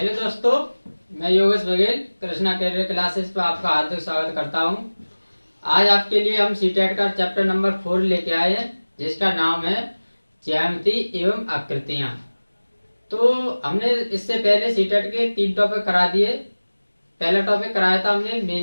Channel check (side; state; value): both; inverted; correlation -1.00